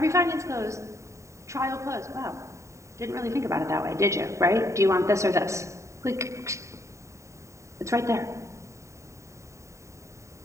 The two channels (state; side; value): late; left; 0.14 ms